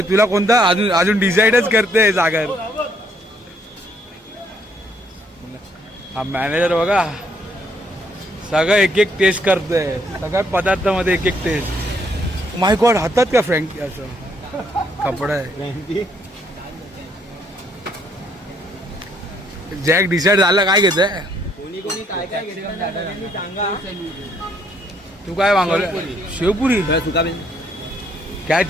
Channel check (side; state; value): both; normal; correlation 0.69